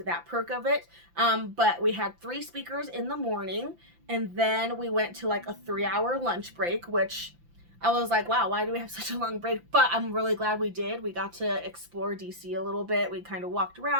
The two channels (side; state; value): left; late; 5.8 ms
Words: that perk of it. But we had 3 speakers in the morning, and then we went to like a 3-hour lunch break, which I was like, wow, why do we have such a long break? But I'm really glad we did. We got to explore DC a little bit. We kind of walked